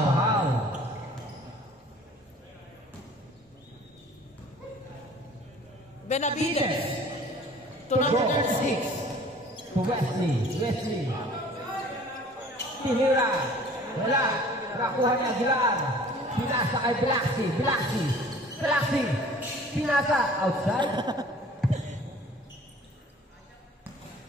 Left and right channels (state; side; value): normal; both; correlation 0.49